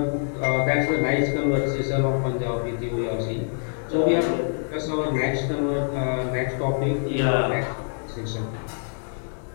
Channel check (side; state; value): right; silent; 62 dB below the other